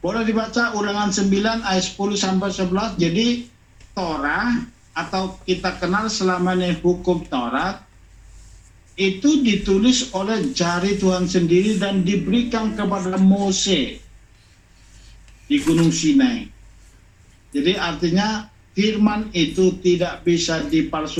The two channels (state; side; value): identical; both; correlation 1.00